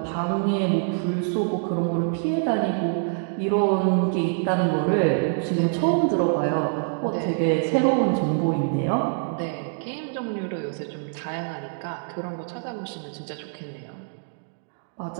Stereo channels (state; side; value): silent; left; digital silence